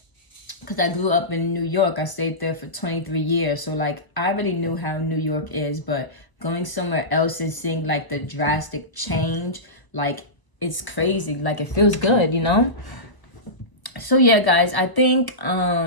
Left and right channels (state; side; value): late; right; 1.0 ms